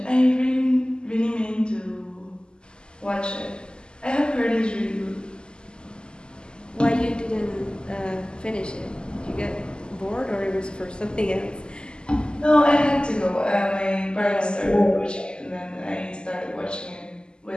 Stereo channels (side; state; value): right; late; 0.048 ms